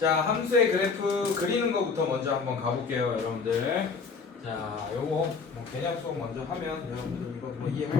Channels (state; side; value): quieter; right; 5.0 dB